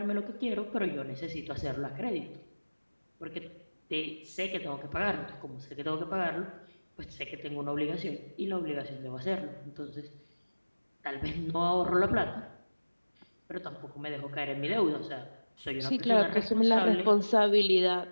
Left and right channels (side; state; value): both; inverted; correlation -1.00